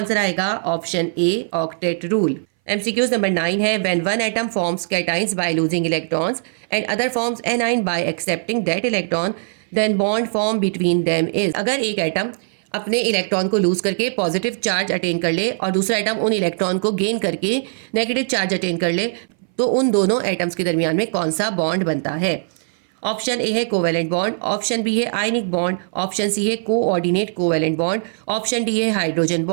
आएगा option A octet rule. MCQ number 9 है, when one atom forms cations by losing electrons and other forms anion by accepting that electron then bond form between them is. अगर एक atom अपने electron को loose करके positive charge attain कर ले और दूसरा एटम उन इलेक्ट्रॉन को गेन करके नेगेटिव चार्ज अटेन कर ले तो उन दोनों एटम्स के दरमियान में कौन सा बॉन्ड बनता है? ऑप्शन ए है कोवेलेंट बॉन्ड, ऑप्शन बी है आयनिक बॉन्ड, ऑप्शन सी है coordinate covalent bond, option D है हाइड्रोजन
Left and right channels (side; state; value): left; silent; 61 dB below the other